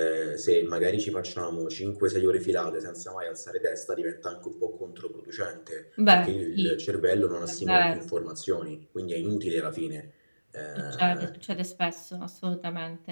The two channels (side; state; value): both; inverted; correlation -1.00